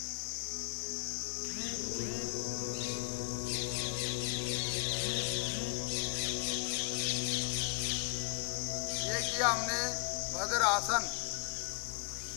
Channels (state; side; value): quieter; right; 35.4 dB